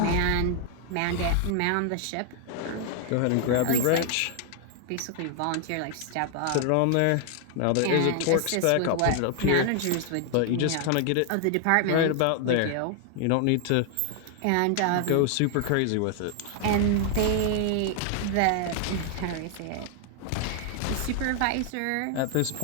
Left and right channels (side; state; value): both; different; correlation 0.00